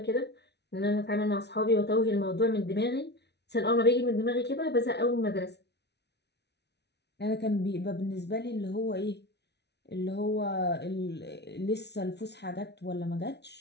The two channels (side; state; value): right; late; 0.50 ms